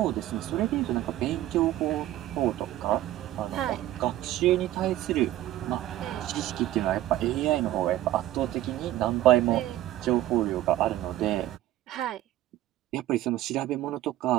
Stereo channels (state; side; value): quieter; left; 14.2 dB